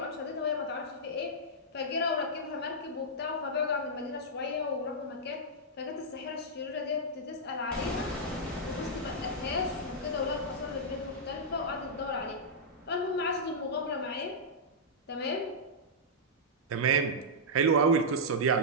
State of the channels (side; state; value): both; normal; correlation -0.09